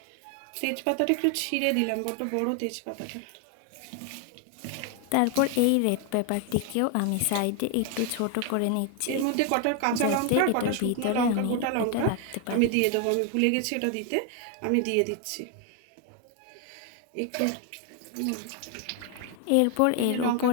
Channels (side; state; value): both; different; correlation 0.01